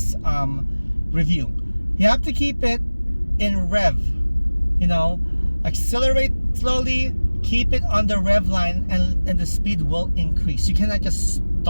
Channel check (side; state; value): both; inverted; correlation -1.00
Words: review. You have to keep it in rev, you know, accelerate slowly, keep it on the rev line, and the speed will increase. You cannot just